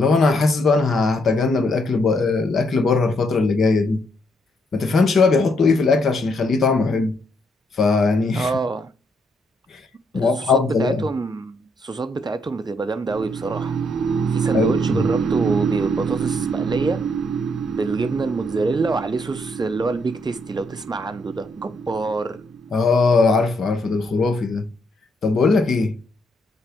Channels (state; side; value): normal; both; correlation 0.74